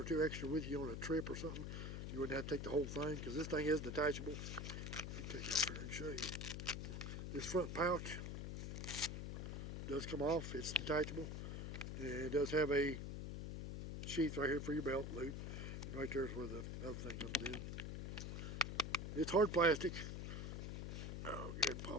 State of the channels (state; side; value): noise; left; hum, 4 dB below the sound